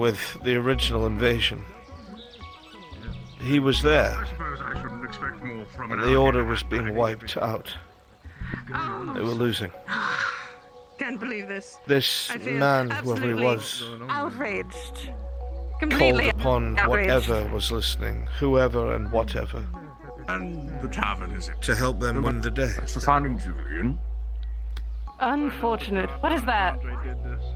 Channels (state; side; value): identical; both; correlation 1.00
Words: the original invasion. He was there, and the Order was being wiped out. They were losing. Can't believe this. This man, whoever he was, Outraged. called Completely upon outraged. whatever was listening, whoever and whatever, And the tavern, is it? to help them win the day. That's the founding Julian. Unfortunate. What is that?